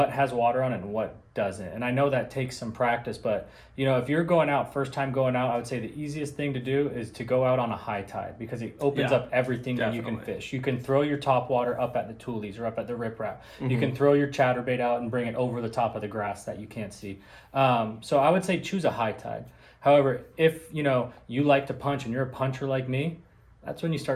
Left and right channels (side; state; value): both; identical; correlation 1.00